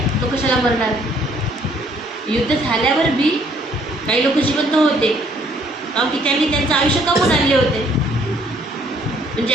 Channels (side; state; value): both; normal; correlation 0.63